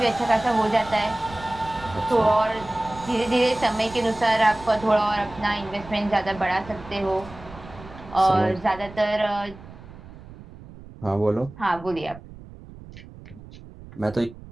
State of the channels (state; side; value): noise; right; rumble, 17 dB below the sound